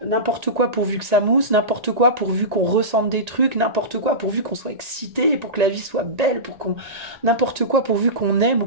N'importe quoi pourvu que ça mousse, n'importe quoi pourvu qu'on ressente des trucs, n'importe quoi pourvu qu'on soit excité, pour que la vie soit belle, n'importe quoi pourvu qu'on aime ou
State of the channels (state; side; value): late; left; 1.8 ms